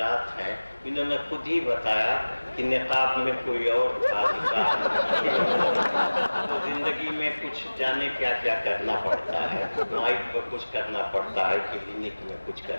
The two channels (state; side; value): inverted; both; correlation -1.00